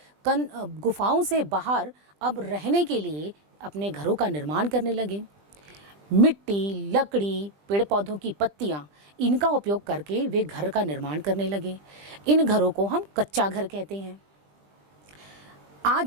गुफाओं से बाहर अब रहने के लिए अपने घरों का निर्माण करने लगे। मिट्टी, लकड़ी, पेड़ पौधों की पत्तियाँ, इनका उपयोग करके वे घर का निर्माण करने लगे। इन घरों को हम कच्चा घर कहते हैं।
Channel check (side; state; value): left; late; 20 ms